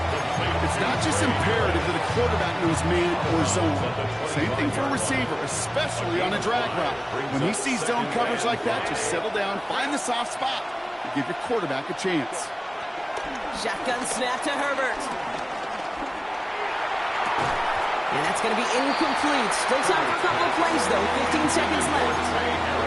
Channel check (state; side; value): identical; both; correlation 1.00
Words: It's not just imperative that a quarterback knows man or zone. Same thing for a receiver, especially on a drag route. When he sees zone coverage like that, just settle down, find the soft spot, and give your quarterback a chance. Shotgun snap to Herbert. And that's going to be incomplete. Still time for a couple of plays, though. 15 seconds left.